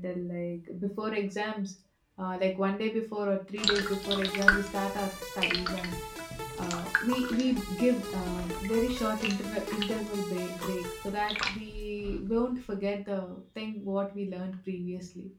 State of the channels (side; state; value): both; identical; correlation 1.00